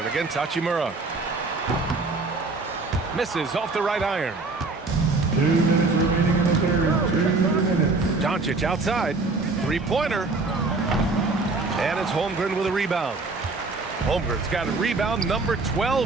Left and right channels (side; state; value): left; quieter; 3.6 dB